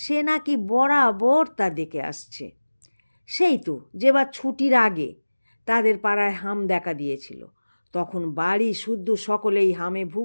সে নাকি বরাবর তা দেখে আসছে। সেই তো যেবার ছুটির আগে তাদের পাড়ায় হাম দেখা দিয়েছিল, তখন বাড়ি শুদ্ধ সকলেই হামে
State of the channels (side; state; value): both; inverted; correlation -1.00